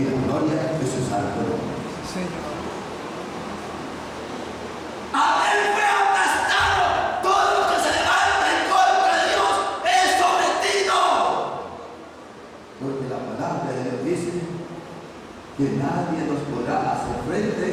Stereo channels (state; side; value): identical; both; correlation 1.00